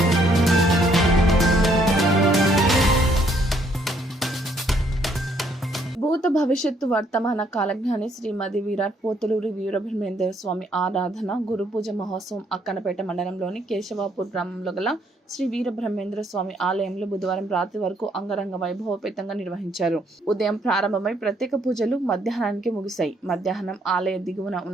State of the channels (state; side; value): normal; both; correlation 0.68